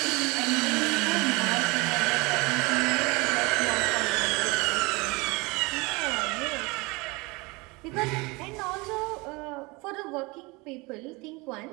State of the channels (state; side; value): quieter; left; 25.4 dB